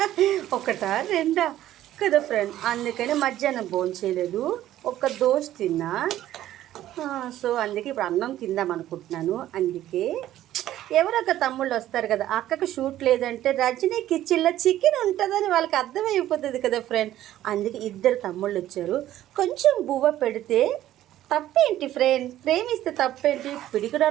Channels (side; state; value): left; quieter; 13.3 dB